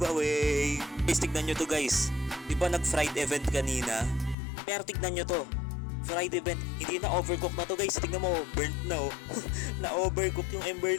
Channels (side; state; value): right; drops out; at 4.4 s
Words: Guys, tignan nyo to guys. Di ba nag-fried event kanina? Pero tignan nyo to. Fried event, hindi na overcook na to guys. Tingnan mo, burnt na, oh. Na overcook yung ember